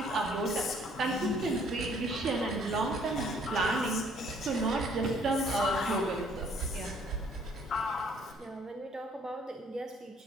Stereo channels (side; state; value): both; normal; correlation 0.61